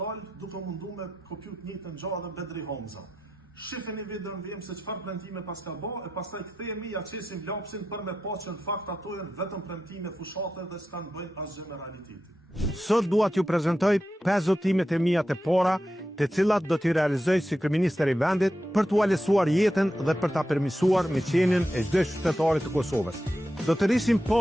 duke mundu me kopjut njëjtën gjë dhe Bedri Homza. Shifeni videon vjem se çfarë premtime pas ka bë, e pastaj kthehemi ja çesim lapsin për me pa që në fakt ato janë vetëm premtime fushate dhe s'kan bëjnë asgjë me realitetin. Sot dua t'ju prezantoj 5 zotimet e mia të para, të cilat do t'i realizoj si kryeministër i vendit për t'u lehtësuar jetën dhe për ta përmirësuar miqenien e çdo qytetari të Kosovës. Do të rrisim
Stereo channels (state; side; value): normal; both; correlation 0.89